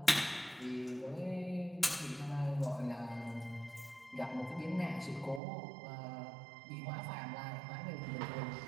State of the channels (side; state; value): left; drops out; at 5.4 s